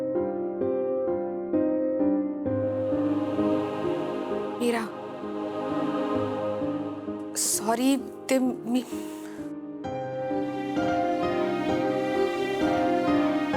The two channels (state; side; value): identical; both; correlation 1.00